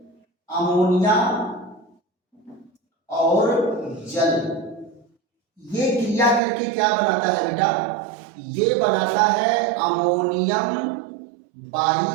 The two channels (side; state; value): left; drops out; at 6.4 s